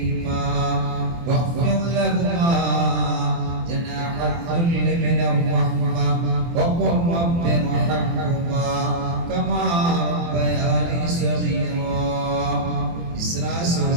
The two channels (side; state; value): left; late; 24 ms